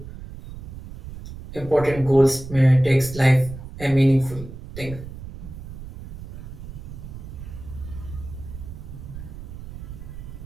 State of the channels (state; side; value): noise; right; rumble, 12 dB below the sound